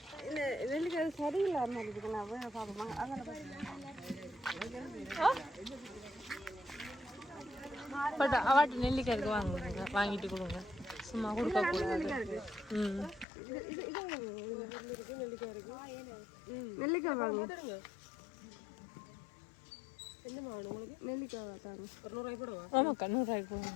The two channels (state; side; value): drops out; right; at 13.2 s